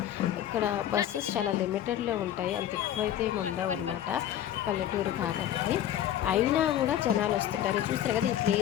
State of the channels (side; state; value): right; quieter; 11.3 dB